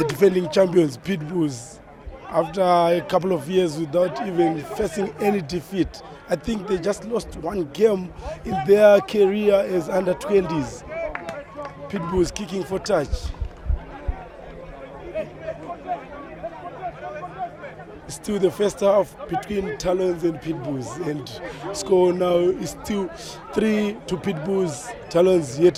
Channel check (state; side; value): identical; both; correlation 1.00